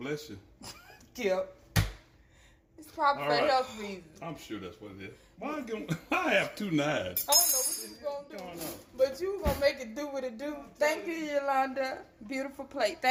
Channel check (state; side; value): identical; both; correlation 1.00